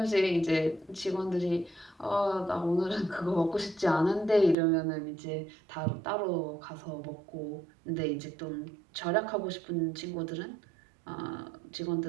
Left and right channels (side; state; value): left; drops out; at 4.5 s